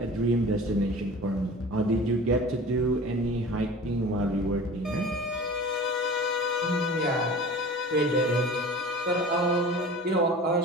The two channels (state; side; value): normal; both; correlation 0.39